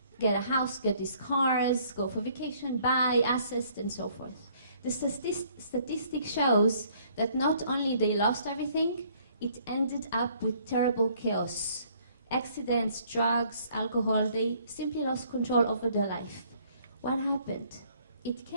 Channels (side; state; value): both; inverted; correlation -0.62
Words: get a house, get these cars, go for vacation, buy assets, and so forth. The statistic shows that not only they lost everything, it ended up with terrible chaos. Accidents, drugs, alcohol, they simply lost control over their life. What happened? It